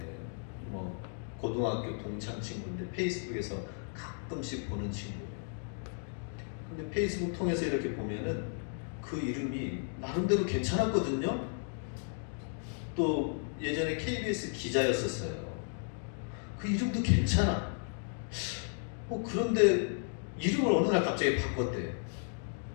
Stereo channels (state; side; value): silent; right; 55 dB below the other